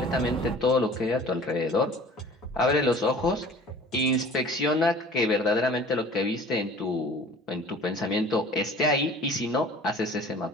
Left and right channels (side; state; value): both; normal; correlation 0.45